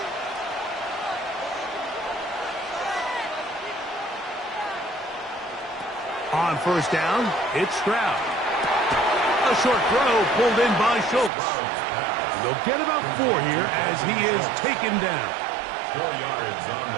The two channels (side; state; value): left; drops out; at 11.3 s